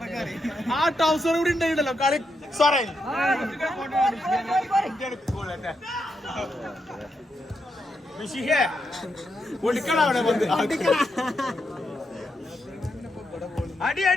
ആ ടൗസർ കൂടി ഉണ്ടായിട്ടല്ലോ കളി. സോറി ഒളിക്കണം അവിടെ വന്ന്. അടി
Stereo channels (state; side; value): normal; both; correlation 0.83